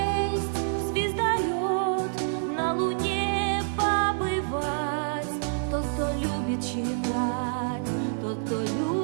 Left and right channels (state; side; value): silent; left; 60 dB below the other